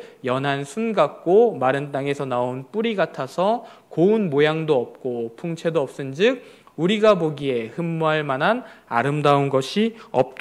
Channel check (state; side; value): identical; both; correlation 1.00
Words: 연한 순 같고 마른 땅에서 나온 뿌리 같아서 고운 모양도 없고 풍채도 없은즉 우리가 보기에 흠모할 만한 아름다운 것이